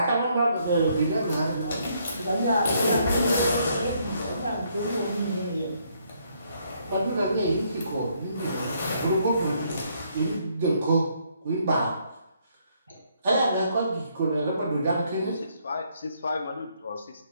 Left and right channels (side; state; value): both; inverted; correlation -0.70